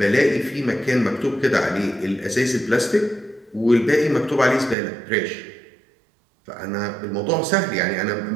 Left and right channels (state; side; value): drops out; left; at 4.8 s